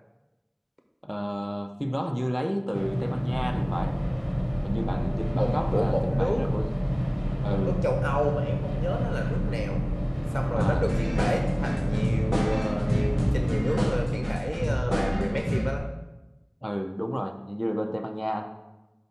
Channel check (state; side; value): identical; both; correlation 1.00